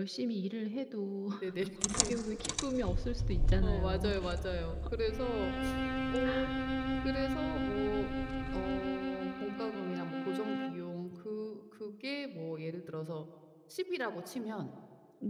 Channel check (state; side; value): identical; both; correlation 1.00